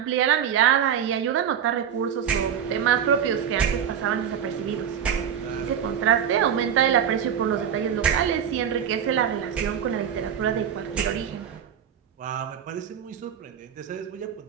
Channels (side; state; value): left; quieter; 8.6 dB